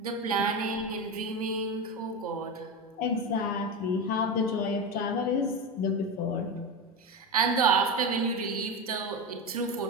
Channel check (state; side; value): normal; both; correlation 0.19